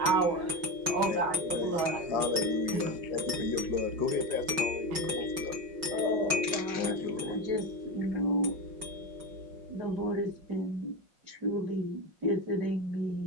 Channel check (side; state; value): left; late; 5.4 ms